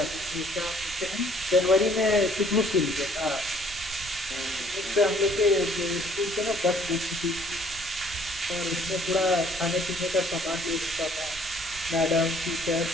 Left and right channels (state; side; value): noise; right; rumble, 17 dB below the sound